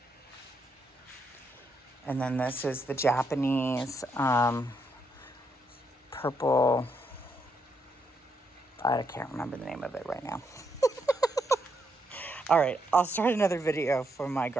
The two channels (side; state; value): both; normal; correlation 0.78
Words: And then this is the Japanese purple. I can't remember the name of it right now. All right, I'll start another video for my